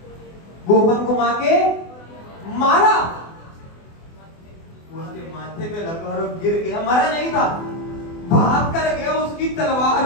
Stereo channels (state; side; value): late; right; 24 ms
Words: मारा, उसके माथे पे लगा और गिर गया, मरा नहीं था, भाग कर गया, उसकी